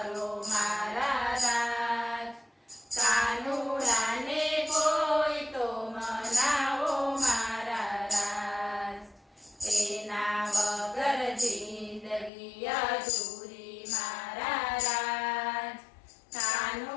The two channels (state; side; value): drops out; right; at 12.3 s